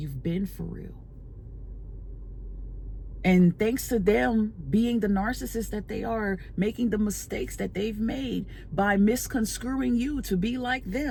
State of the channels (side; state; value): both; identical; correlation 1.00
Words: been for real. And thanks to them being the narcissist that they are, making the mistakes that they've made by misconstruing you to be like